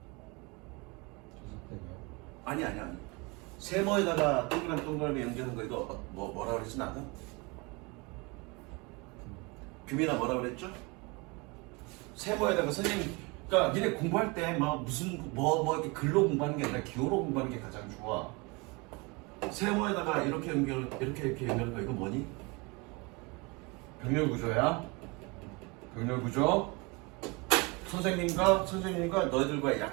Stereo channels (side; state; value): left; quieter; 27.6 dB